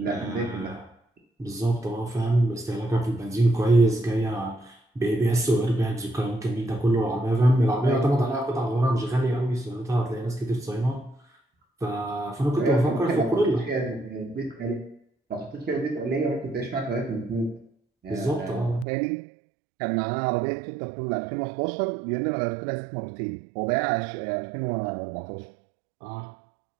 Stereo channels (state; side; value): drops out; left; at 18.9 s